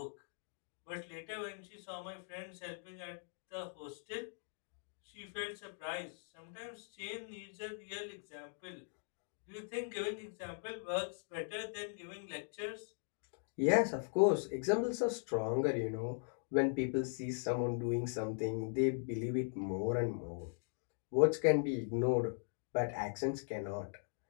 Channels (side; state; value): right; silent; digital silence